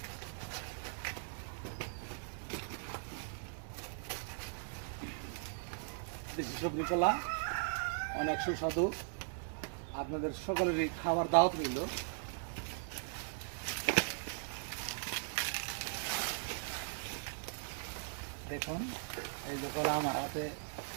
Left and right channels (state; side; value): silent; left; 52 dB below the other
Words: দেশি সবজি কলা অনেক সুস্বাদু, আপনাদের সকলেরই খাবার দাওয়াত রইল। দেখুন এই যে কলা আমার হাতে